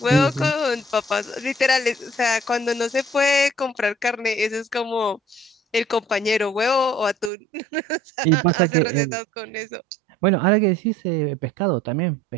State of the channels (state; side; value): drops out; left; at 7.3 s